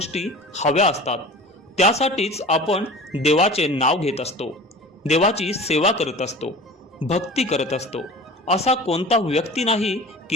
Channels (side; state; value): both; normal; correlation 0.39